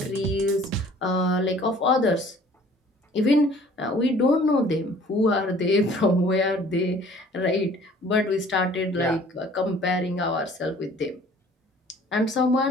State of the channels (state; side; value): normal; both; correlation 0.53